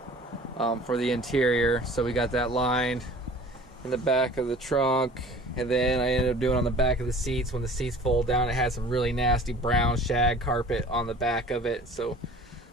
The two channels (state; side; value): normal; both; correlation 0.46